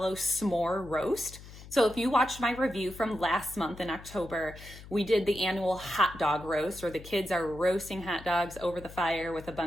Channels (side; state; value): left; noise; hum, 16 dB below the sound